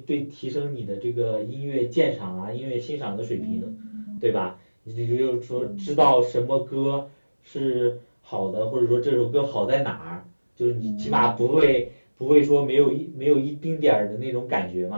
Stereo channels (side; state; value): both; inverted; correlation -1.00